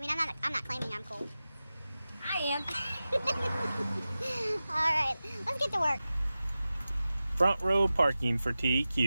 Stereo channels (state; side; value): inverted; both; correlation -0.95